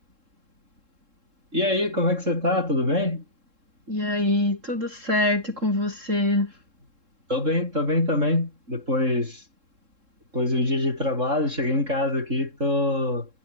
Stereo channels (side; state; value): left; late; 3.7 ms